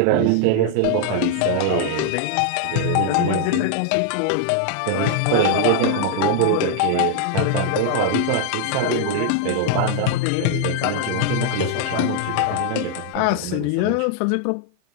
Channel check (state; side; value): different; both; correlation 0.00